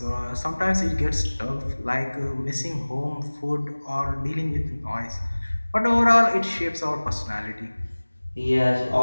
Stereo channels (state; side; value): inverted; both; correlation -1.00